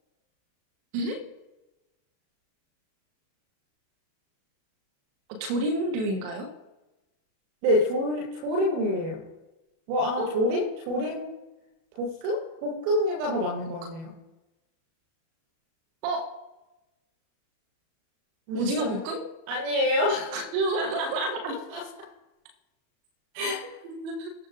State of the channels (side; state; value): left; late; 37 ms